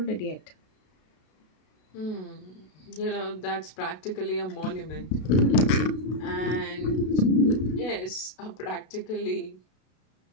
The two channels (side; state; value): right; late; 32 ms